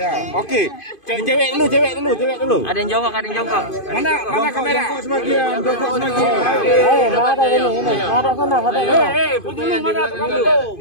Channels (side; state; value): right; late; 2.5 ms